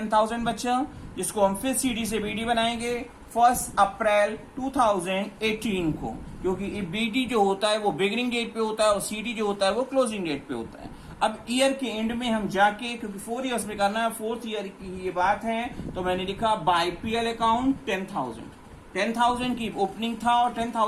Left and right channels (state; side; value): identical; both; correlation 1.00